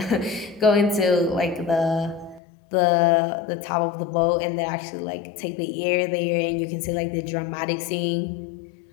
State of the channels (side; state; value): right; drops out; at 2.4 s